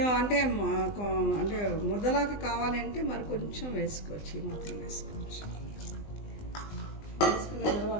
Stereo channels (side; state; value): right; late; 20 ms